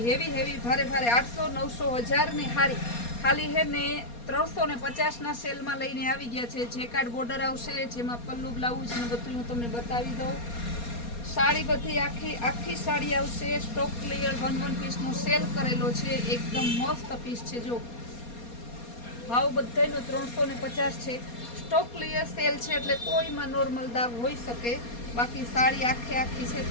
હેવી ભારે 800 900 1000 ની હારી ખાલી હે ને 350 ના સેલમાં લઈને આવી ગયા છે. જેકાર્ડ બોર્ડર આવશે, જેમાં પલ્લુ બ્લાઉઝ ને બધું હું તમને બતાવી દઉં. સાડી બધી આખી સાડી આવશે. સ્ટોક ક્લિયર 1 પીસનો સેલ કરેલો છે. એકદમ મસ્ત પીસ છે. જો ભાવ બધાનો 350 છે. સ્ટોક ક્લિયર સેલ છે એટલે કોઈમાં નોર્મલ દાગ હોઈ શકે. બાકી સાડી આખી છે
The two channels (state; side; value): late; right; 4.2 ms